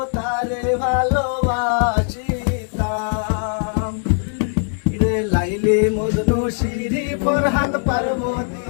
তারে ভালোবাসিতাম রে লাইলি মজনু সিঁড়ি ফরহাদ পার্বতী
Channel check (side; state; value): right; silent; 56 dB below the other